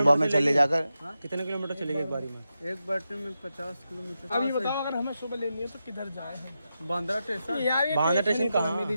में चले जाकर। कितने किलोमीटर चलेगी एक बारी में? एक बैटरी में 50 किलोमीटर। अब ये बताओ, अगर हमें सुबह लेनी है तो किधर जाए हम? बांद्रा स्टेशन। यार ये बांद्रा स्टेशन कहाँ?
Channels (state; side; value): inverted; both; correlation -0.89